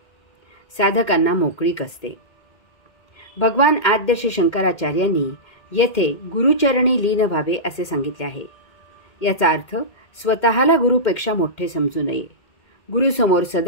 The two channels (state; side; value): late; right; 2.1 ms